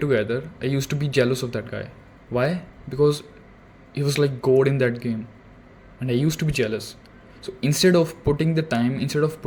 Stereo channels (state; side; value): identical; both; correlation 1.00